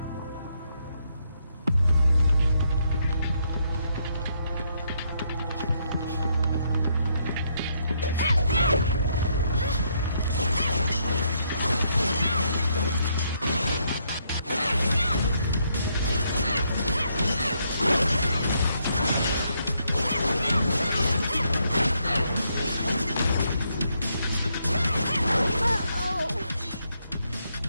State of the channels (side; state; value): both; inverted; correlation -0.75